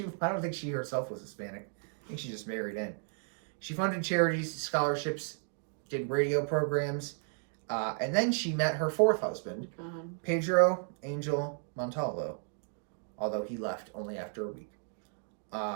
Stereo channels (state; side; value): silent; left; 55 dB below the other